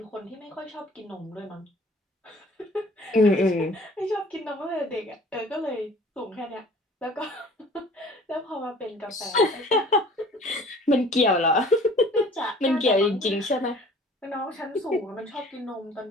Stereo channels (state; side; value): normal; both; correlation 0.50